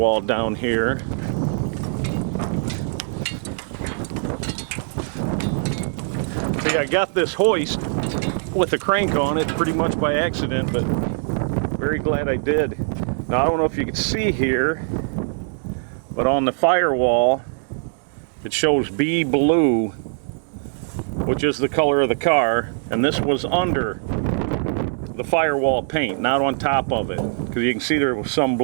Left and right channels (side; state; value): left; silent; digital silence